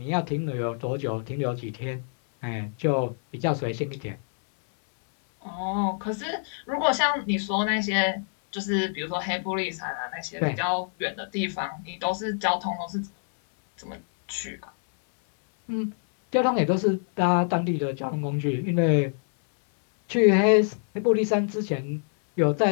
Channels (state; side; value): silent; right; 61 dB below the other